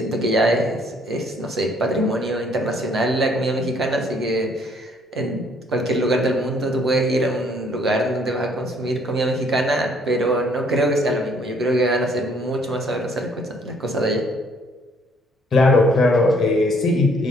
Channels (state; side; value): normal; both; correlation 0.64